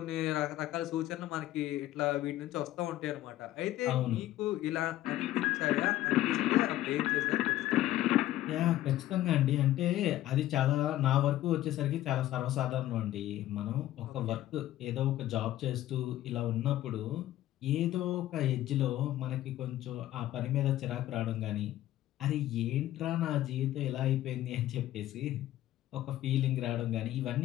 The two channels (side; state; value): right; quieter; 14.2 dB